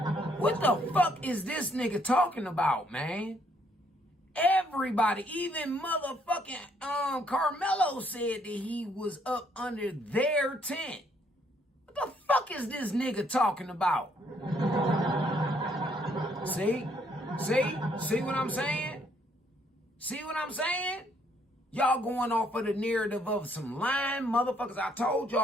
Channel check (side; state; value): both; normal; correlation 0.68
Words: What the fuck is this nigga talking about, man? Everybody, even motherfucking Carmelo said that he was up under their tent. What the fuck is this nigga talking about? See? See what I'm saying? See what I'm saying? Y'all going off of the narrative of some lying motherfuckers. I told